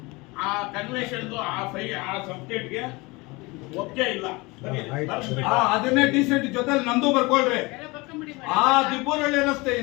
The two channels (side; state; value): right; quieter; 24.5 dB